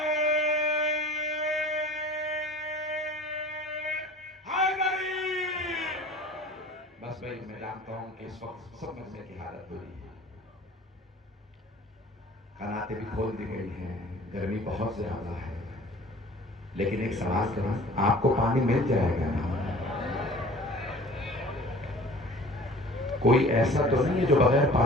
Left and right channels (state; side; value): normal; both; correlation 0.46